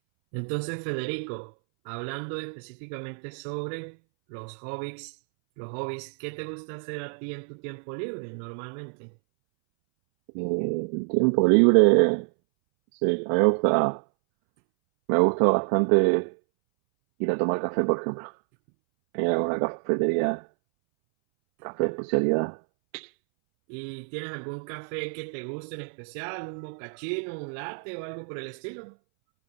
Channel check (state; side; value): silent; left; 60 dB below the other